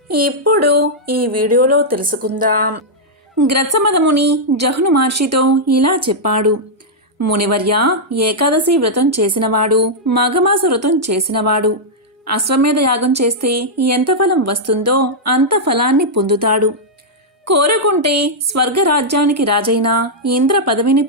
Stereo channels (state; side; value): normal; both; correlation -0.07